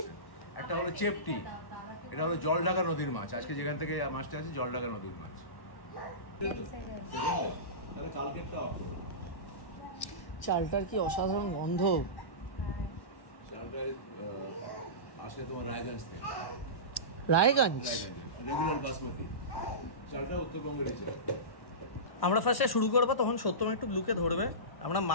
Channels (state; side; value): late; right; 1.1 ms